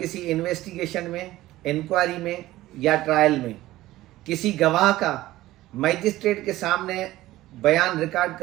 انویسٹیگیشن میں، انکوائری میں یا ٹرائل میں کسی گواہ کا میجسٹریٹ کے سامنے بیان ریکارڈ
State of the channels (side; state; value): left; quieter; 16.3 dB